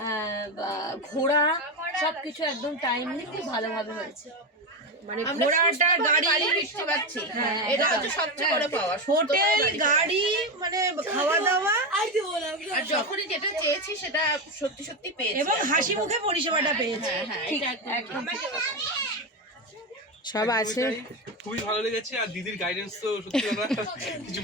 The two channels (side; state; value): both; normal; correlation 0.14